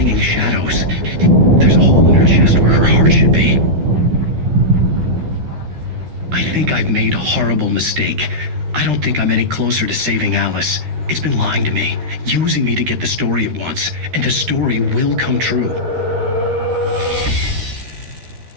shadows. There's a hole in her chest where her heart should be. I think I've made a horrible mistake. I don't think I'm any closer to saving Alice. It's been lying to me, using me to get the story it wants, and the story will come true.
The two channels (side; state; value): left; late; 13 ms